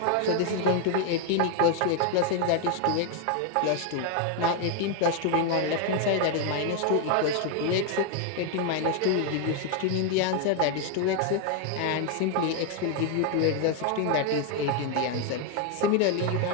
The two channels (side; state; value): both; different; correlation 0.01